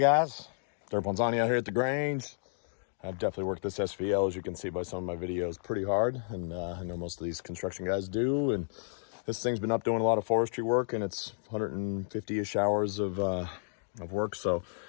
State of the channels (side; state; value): right; silent; digital silence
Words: guys, Derp Ponzani out here at the Grange. I've definitely worked this SVL, as you can see by some of my videos, pretty hard, and I know most of these construction guys do. And this thing's been up doing a lot of forestry work, and it's 150-ish hours of work. So